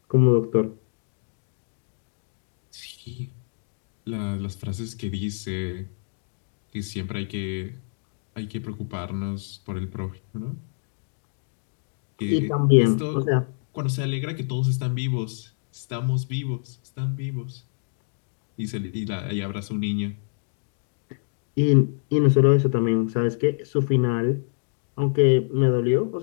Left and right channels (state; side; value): silent; right; digital silence